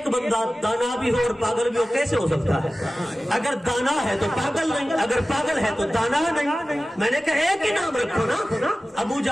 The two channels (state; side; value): normal; both; correlation 0.96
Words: بندہ دانا بھی ہو اور پاگل بھی ہو، کیسے ہو سکتا ہے؟ اگر دانا ہے تو پاگل نہیں، اگر پاگل ہے تو دانا نہیں۔ میں نے کہا ایک ہی نام رکھو نا۔ ابو